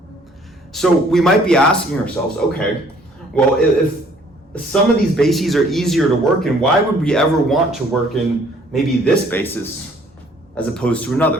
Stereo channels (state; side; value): normal; both; correlation 0.59